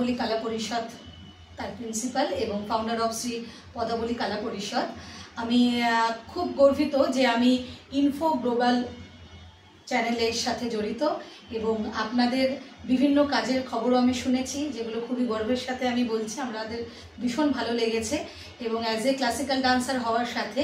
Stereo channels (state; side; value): identical; both; correlation 1.00